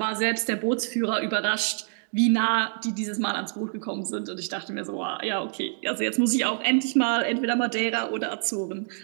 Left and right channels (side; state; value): left; silent; digital silence